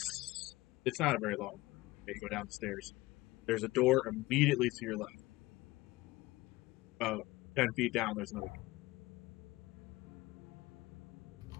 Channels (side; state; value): right; quieter; 19.8 dB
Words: It's not very long. You go down the stairs. There's a door immediately to your left. 10 feet down, there's another door.